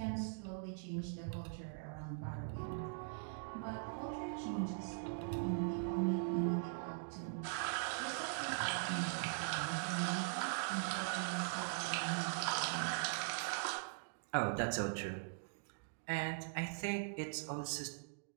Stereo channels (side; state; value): left; silent; digital silence